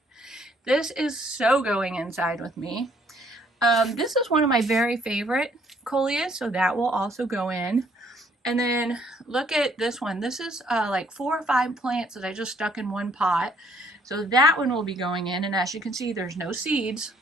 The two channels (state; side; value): normal; both; correlation 0.65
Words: This is so going inside with me. This is one of my very favorite Coleus, so that will also go in. And then look at this one. This is like 4 or 5 plants that I just stuck in one pot. So that one will be going in, and as you can see, there's no seeds.